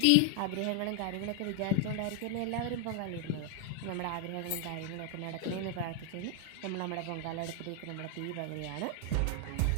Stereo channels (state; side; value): different; both; correlation 0.00